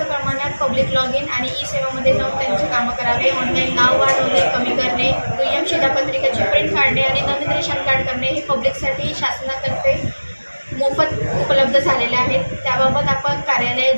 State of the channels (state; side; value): inverted; both; correlation -1.00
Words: प्रमाणात पब्लिक लॉग इन आणि ई सेवामध्ये जाऊन त्यांची कामं करावे. ऑनलाईन नाव वाढवणे कमी करणे, दुय्यम शिधापत्रिकेची प्रिंट काढणे आणि नवीन रेशन कार्ड करणे हे पब्लिकसाठी शासनातर्फे मोफत उपलब्ध झालेले आहेत. त्याबाबत आपण